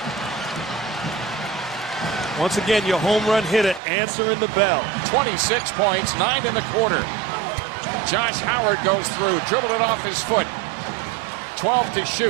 Once again, your home run hitter answering the bell. 26 points, 9 in the quarter. Josh Howard goes through, dribbled it off his foot. 12 to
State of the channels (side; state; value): left; drops out; at 3.8 s